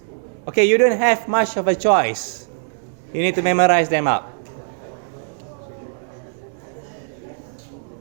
Okay, you don't have much of a choice. You need to memorize them up.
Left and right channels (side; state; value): left; silent; digital silence